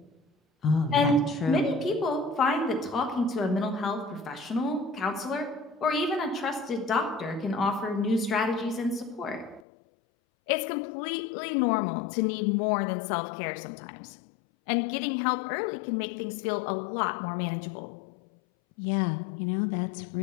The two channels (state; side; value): drops out; right; at 9.6 s